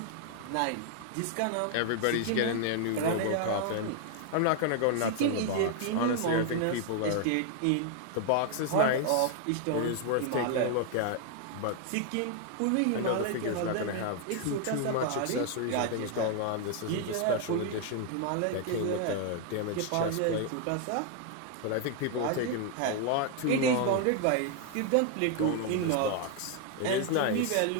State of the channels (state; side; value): different; both; correlation 0.00